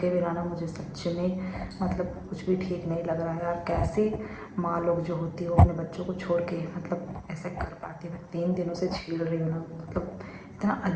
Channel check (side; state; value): both; identical; correlation 1.00